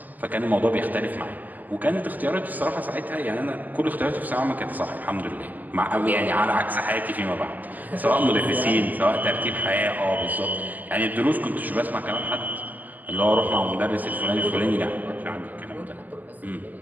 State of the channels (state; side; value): late; left; 0.083 ms